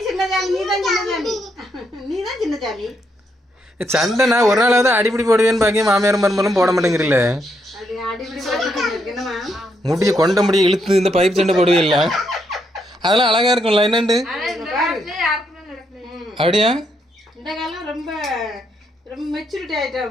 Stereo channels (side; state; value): both; normal; correlation 0.77